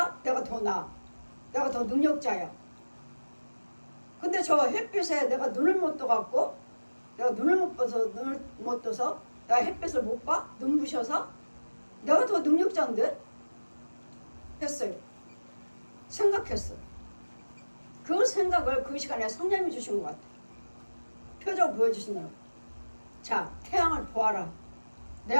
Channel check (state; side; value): inverted; both; correlation -1.00